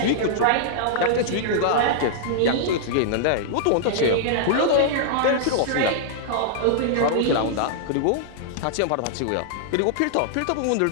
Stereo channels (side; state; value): both; different; correlation -0.01